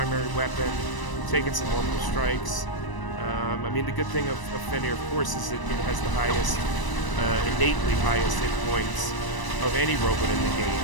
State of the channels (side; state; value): right; late; 1.0 ms